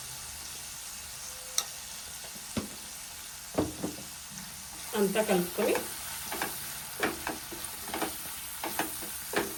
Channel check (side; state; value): both; identical; correlation 1.00